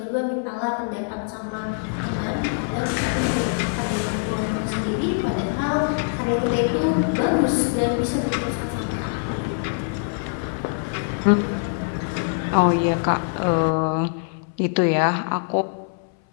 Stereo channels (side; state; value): right; silent; 63 dB below the other